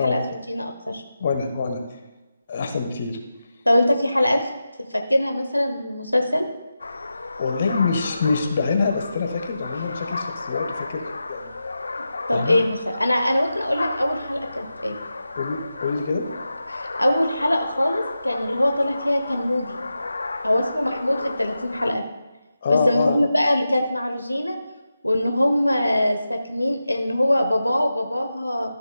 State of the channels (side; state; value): both; inverted; correlation -0.91